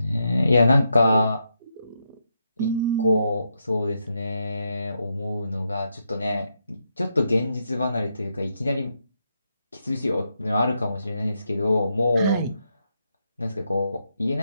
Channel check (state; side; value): inverted; both; correlation -0.82